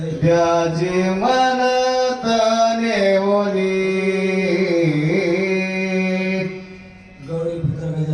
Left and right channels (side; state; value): both; identical; correlation 1.00